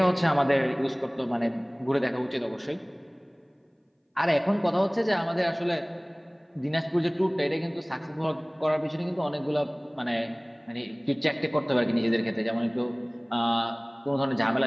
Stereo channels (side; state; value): both; identical; correlation 1.00